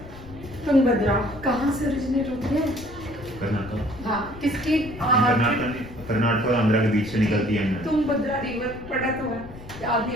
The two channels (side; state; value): left; noise; rumble, 16 dB below the sound